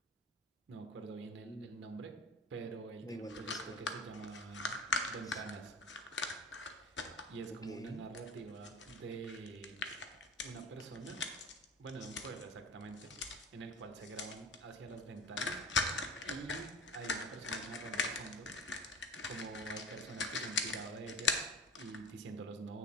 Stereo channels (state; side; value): normal; both; correlation 0.37